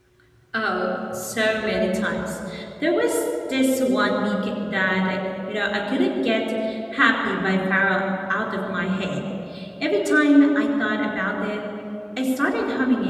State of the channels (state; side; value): identical; both; correlation 1.00